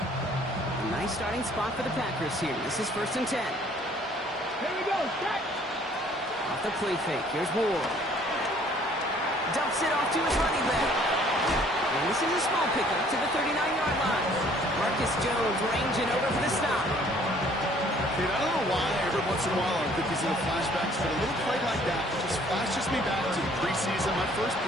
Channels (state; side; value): normal; both; correlation 0.58